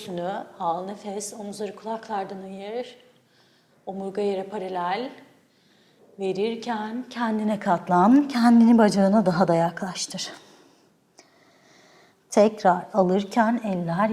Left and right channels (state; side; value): identical; both; correlation 1.00